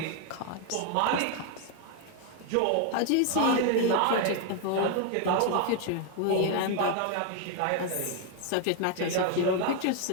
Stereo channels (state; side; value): different; both; correlation 0.00